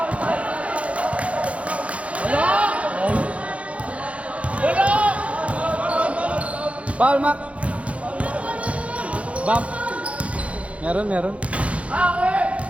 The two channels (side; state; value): left; late; 0.063 ms